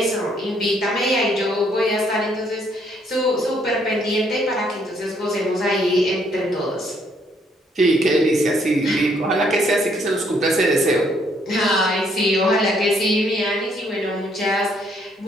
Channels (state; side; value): normal; both; correlation 0.68